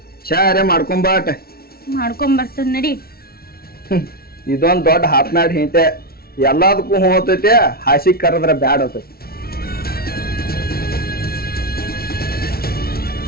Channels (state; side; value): late; right; 0.44 ms